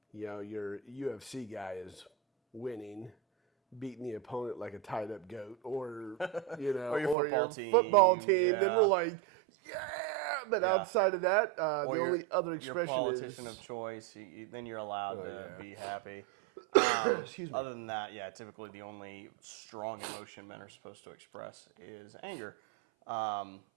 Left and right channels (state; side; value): drops out; left; at 7.2 s